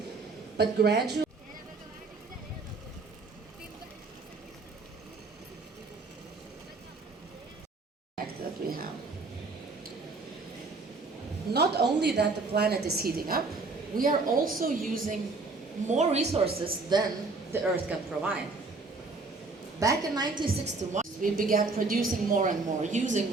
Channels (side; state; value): left; quieter; 3.8 dB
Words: but gradually that we have. Not only that the planet is heating up, we are also using more resources than the Earth can provide. Back in 1961, we began producing more and more, using